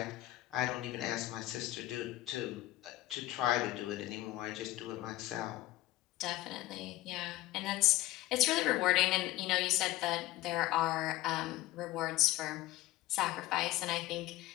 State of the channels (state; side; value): quieter; right; 17.0 dB